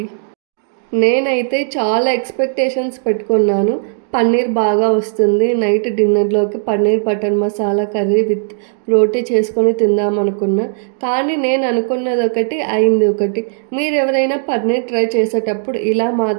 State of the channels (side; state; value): left; silent; digital silence